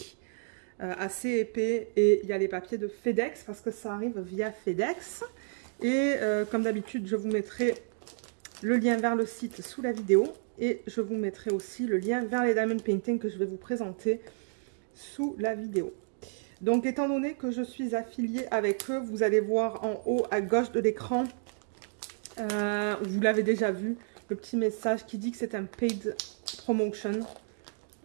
assez épais, et il y a les papiers de FedEx parce que ça arrive via FedEx. Et comme d'habitude, je vous mettrai le lien vers le site sous la vidéo et je vous mettrai aussi le lien vers les diamond painting que je vais vous présenter sous la vidéo. Donc étant donné que je suis affiliée avec eux, vous allez voir en haut à gauche de l'écran, vous l'avez déjà vu, le petit message qui dit que c'est un paid promotion,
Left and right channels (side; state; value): left; silent; digital silence